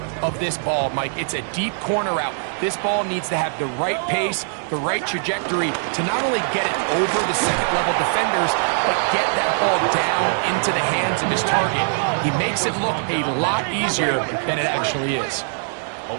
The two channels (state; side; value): silent; left; 64 dB below the other